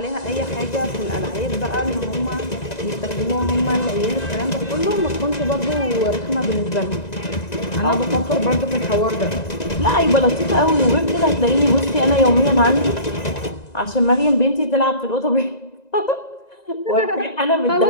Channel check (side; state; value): right; late; 1.9 ms